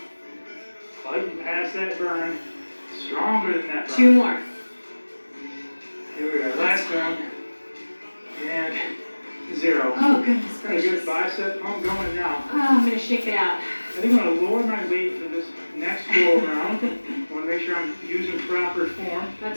Fighting past that burn. Stronger than that burn. 2 more. Here we are, last one. And 0. Oh, goodness Got a good gracious. bicep pump going now. Oh, I'm going to shake it out. I think I'm going to lower my weight for this next go around. I want to make sure I'm using proper form.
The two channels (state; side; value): inverted; both; correlation -1.00